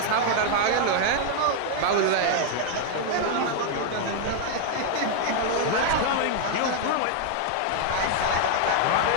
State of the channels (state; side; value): different; both; correlation 0.00